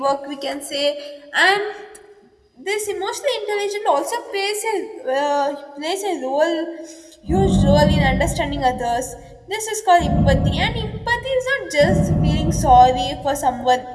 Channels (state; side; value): identical; both; correlation 1.00